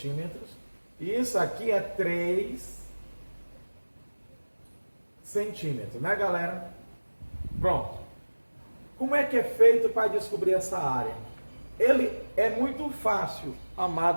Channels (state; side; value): inverted; both; correlation -1.00